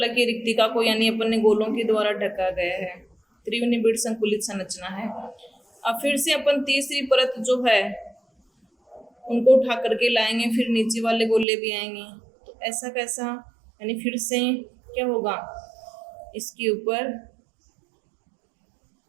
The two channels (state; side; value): drops out; left; at 11.5 s